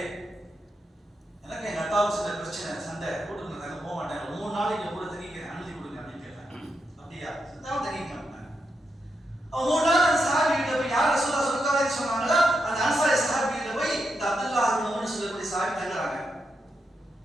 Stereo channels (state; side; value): normal; both; correlation 0.84